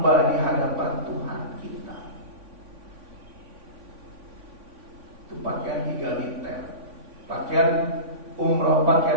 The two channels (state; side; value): late; left; 3.5 ms